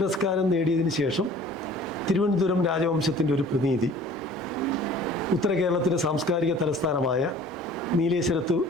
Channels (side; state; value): both; normal; correlation 0.49